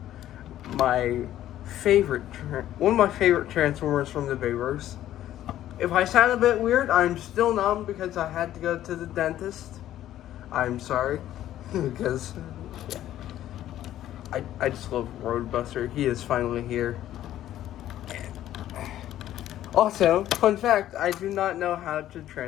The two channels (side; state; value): right; quieter; 12.7 dB